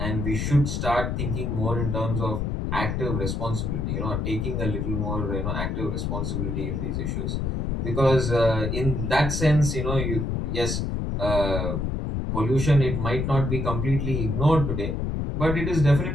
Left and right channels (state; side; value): noise; left; rumble, 1 dB below the sound